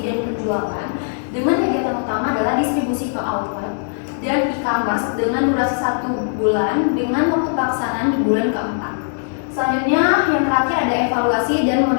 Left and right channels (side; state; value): right; silent; 59 dB below the other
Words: penjualan dengan kegiatan utama adalah distribusi ke outlet dan e-commerce dengan durasi 1 bulan dengan waktu pelaksanaan di bulan keempat. Selanjutnya yang terakhir ada evaluasi dan